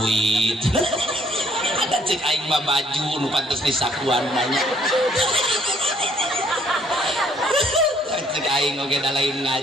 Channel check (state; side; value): normal; both; correlation 0.64